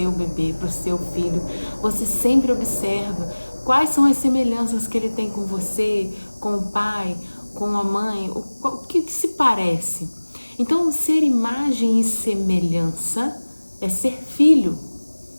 bebê, para o seu filho, você sempre observa quais são as semelhanças que ele tem com você, com o pai, com a mãe, o que se parece. Então, ser imagem e semelhança é ser filho,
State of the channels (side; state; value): both; inverted; correlation -1.00